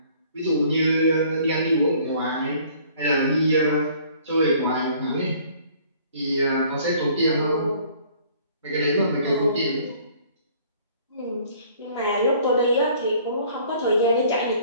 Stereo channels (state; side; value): inverted; both; correlation -0.56